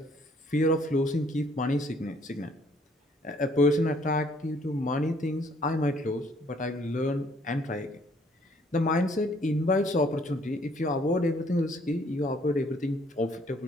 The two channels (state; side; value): normal; both; correlation 0.63